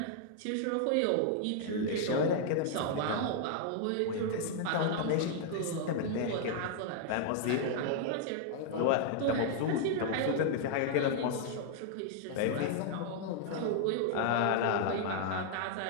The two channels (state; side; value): different; both; correlation -0.01